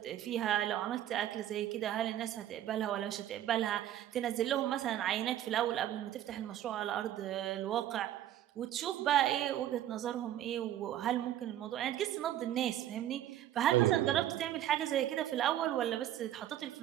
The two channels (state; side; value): quieter; left; 12.2 dB